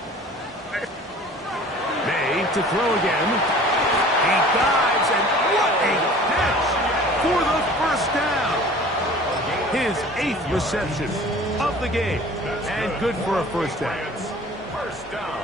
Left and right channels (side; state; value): both; normal; correlation 0.45